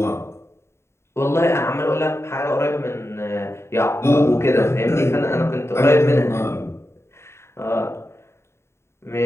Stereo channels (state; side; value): late; right; 0.13 ms